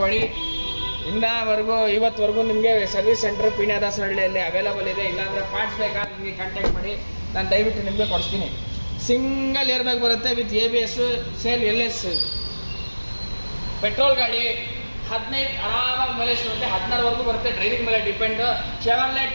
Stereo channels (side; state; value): both; inverted; correlation -1.00